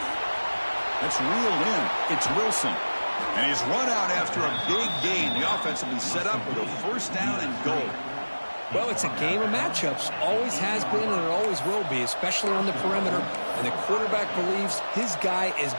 That's reeled in. It's Wilson. And he's run out after a big gain. The offense will be set up with a 1st down and goal. Well, it's a game of matchups. Always has been and it always will be, especially on the perimeter. And the quarterback believes his guy is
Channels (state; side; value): inverted; both; correlation -1.00